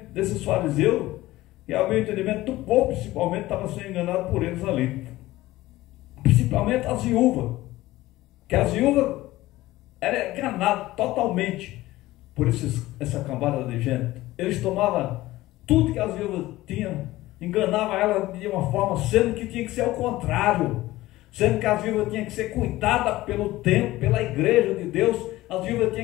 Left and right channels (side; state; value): right; quieter; 17.2 dB